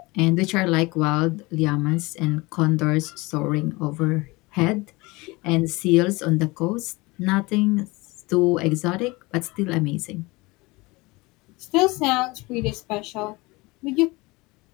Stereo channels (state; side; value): quieter; right; 23.4 dB